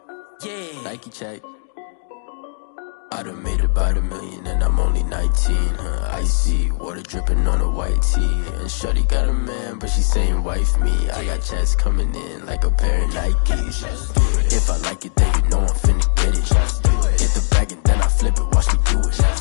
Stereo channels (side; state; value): right; silent; digital silence